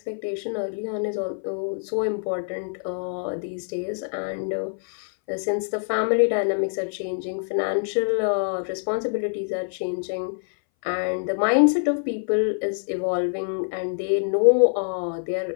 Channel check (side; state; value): right; silent; 60 dB below the other